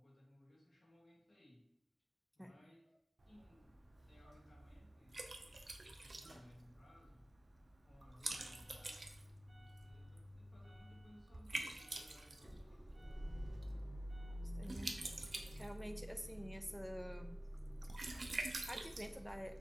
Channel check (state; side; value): normal; both; correlation 0.97